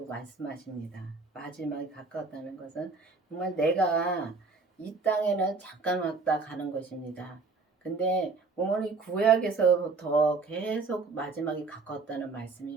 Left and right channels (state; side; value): quieter; left; 4.2 dB